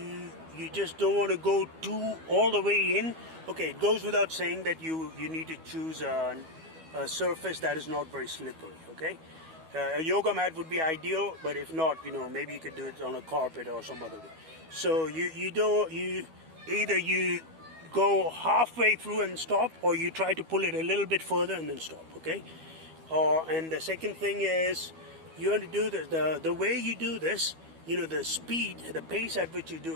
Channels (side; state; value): left; late; 12 ms